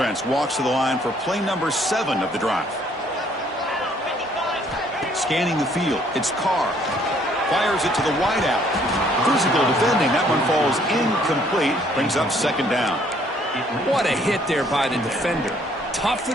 walks to the line for play number 7 of the drive. Scanning the field, it's Carr. Fires it to the wideout. Physical defending, that one falls incomplete. Brings up 2nd down. What a hit there by the defender. Tough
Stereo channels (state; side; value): normal; both; correlation 0.63